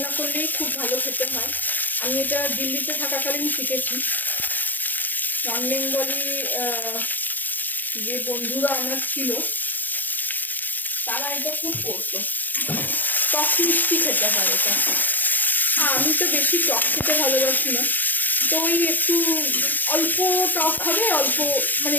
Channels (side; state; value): right; late; 0.086 ms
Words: করলেই খুব ভালো খেতে হয়। আমি এটা দিল্লিতে থাকাকালীন শিখেছি। নন বেঙ্গলি যে বন্ধুরা আমার ছিল তারা এটা খুব করতো। টক মিষ্টি খেতে হয় এটা। আমি তো বেশি টক খেতে ভালোবাসি না, তো ওই একটু অল্প টক হবে, অল্প মানে